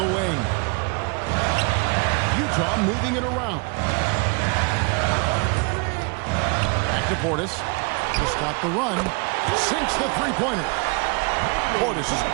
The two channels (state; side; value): quieter; left; 31.7 dB